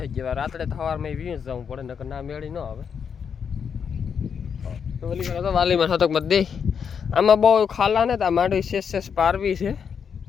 જેવા. રાત્રે સવારમાં વીસ જવું પડે નકર ના મેળી ન આવે. તો ઓલી તો વાલીમાં શતકમાં દે. આમાં બહુ ખાલા ને તો આ માંડવી શેષ પારવી છે.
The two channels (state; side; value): quieter; right; 7.0 dB